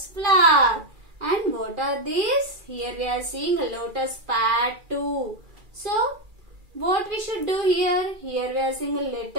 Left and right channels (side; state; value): left; late; 2.3 ms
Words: flower. And what are these? Here we are seeing a lotus pad too. So, what we should do here? Here we are seeing